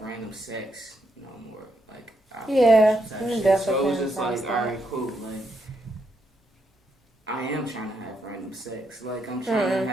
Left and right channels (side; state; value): both; normal; correlation 0.79